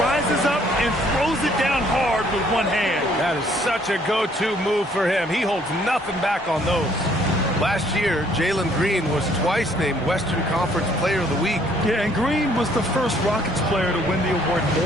up and throws it down hard with one hand. That is such a go-to move for him. He holds nothing back on those. Last year, Jalen Green was twice named Western Conference Player of the Week. Yeah, and Green was the first Rockets player to win the award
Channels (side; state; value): both; normal; correlation 0.63